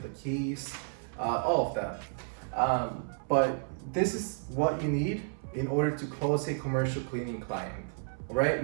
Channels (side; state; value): left; silent; 57 dB below the other